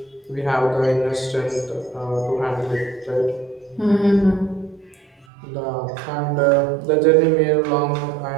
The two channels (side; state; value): left; drops out; at 5.2 s